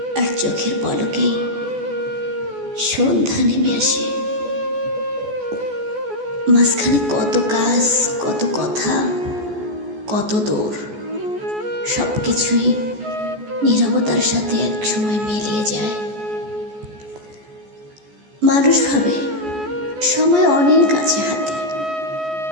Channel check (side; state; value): left; late; 14 ms